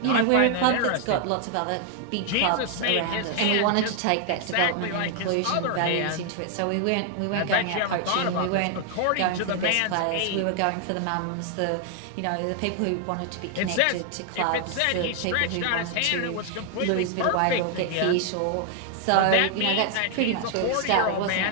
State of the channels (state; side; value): different; both; correlation 0.00